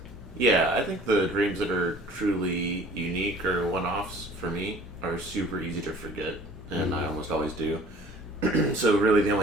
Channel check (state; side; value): normal; both; correlation 0.49